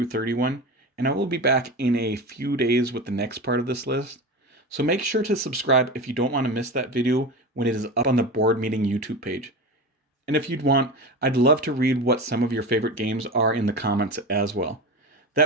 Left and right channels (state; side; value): normal; both; correlation 0.26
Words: 31, and I will be back in a few days with the next part of this list. So make sure to subscribe if you don't want to miss that video when it is up on the Board Meeting YouTube page. And if you'd want, I'd love to read what some of your favorite games are in the comments as well.